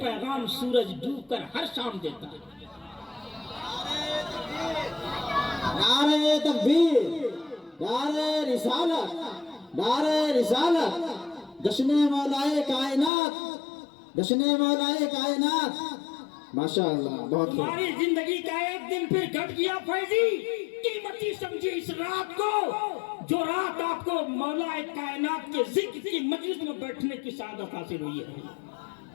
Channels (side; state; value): right; drops out; at 13.1 s